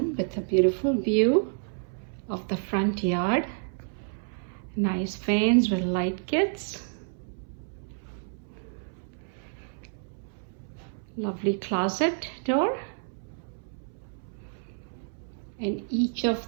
with a beautiful view of the front yard. Nice fans with light kits. Lovely closet door. And each of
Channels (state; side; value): silent; left; 58 dB below the other